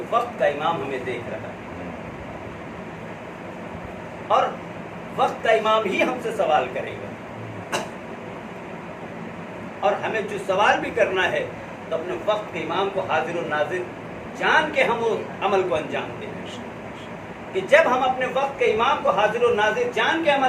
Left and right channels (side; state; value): both; identical; correlation 1.00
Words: وقت کا امام ہمیں دیکھ رہا ہے، اور وقت کا امام ہی ہم سے سوال کرے گا۔ اور ہمیں جو سوال بھی کرنا ہے تو اپنے وقت کے امام کو حاضر و ناظر جان کے ہم اس عمل کو انجام دیں، کہ جب ہم اپنے وقت کے امام کو حاضر و ناظر جان کے